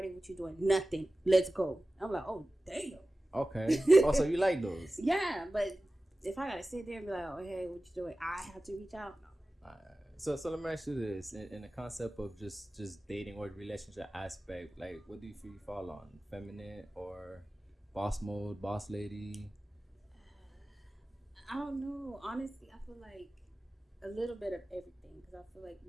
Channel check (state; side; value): normal; both; correlation 0.96